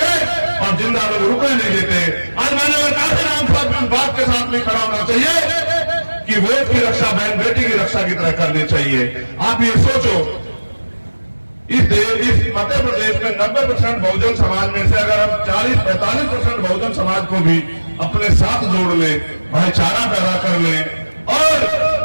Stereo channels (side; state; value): both; inverted; correlation -1.00